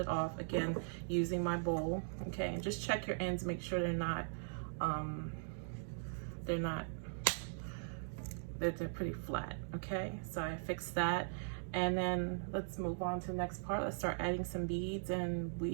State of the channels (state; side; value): silent; left; digital silence